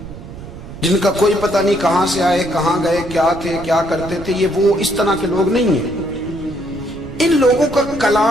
جن کا کوئی پتہ نہیں کہاں سے آئے، کہاں گئے، کیا تھے، کیا کرتے تھے، یہ وہ اس طرح کے لوگ نہیں ہیں۔ ان لوگوں کا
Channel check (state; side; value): noise; right; rumble, 14 dB below the sound